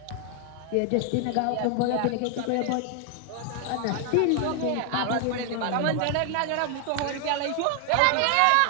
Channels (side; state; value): both; different; correlation 0.00